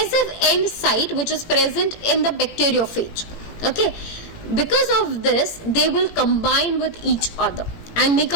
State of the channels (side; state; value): right; late; 18 ms